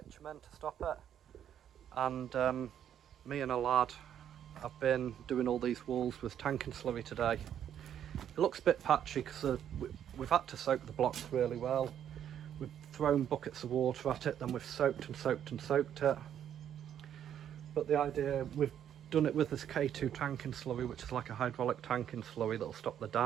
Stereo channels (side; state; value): left; quieter; 9.7 dB